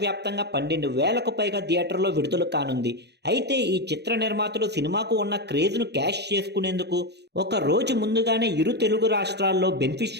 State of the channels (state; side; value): late; left; 0.49 ms